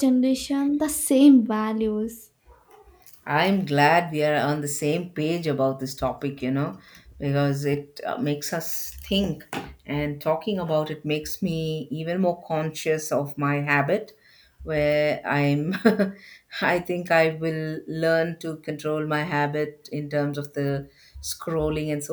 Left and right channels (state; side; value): identical; both; correlation 1.00